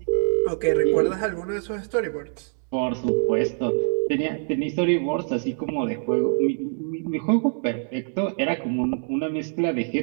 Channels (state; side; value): silent; left; 60 dB below the other